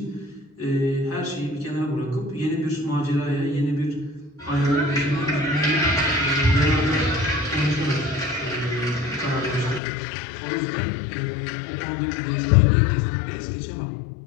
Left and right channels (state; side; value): drops out; right; at 9.8 s